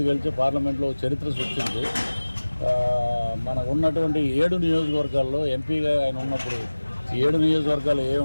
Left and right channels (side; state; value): both; inverted; correlation -1.00